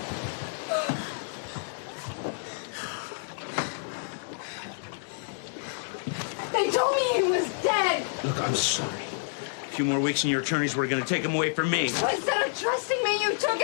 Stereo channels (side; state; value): right; silent; digital silence